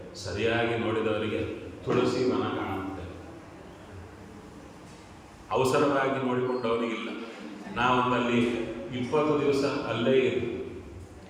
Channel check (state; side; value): identical; both; correlation 1.00